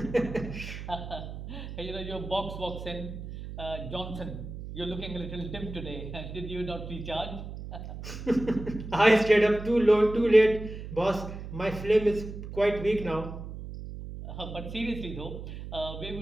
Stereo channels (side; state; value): right; noise; hum, 9 dB below the sound